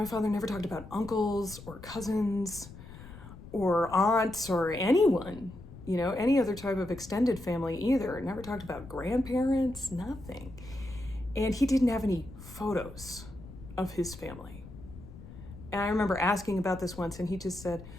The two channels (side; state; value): left; noise; rumble, 16 dB below the sound